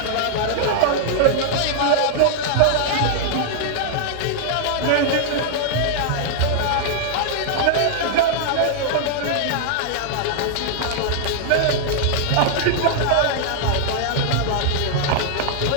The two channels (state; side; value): different; both; correlation -0.01